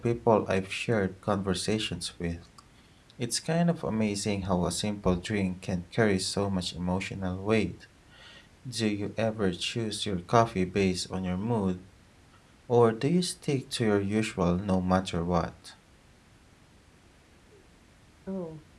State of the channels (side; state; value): both; identical; correlation 1.00